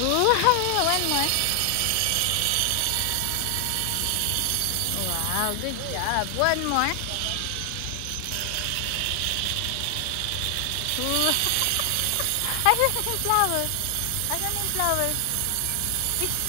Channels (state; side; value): different; both; correlation 0.00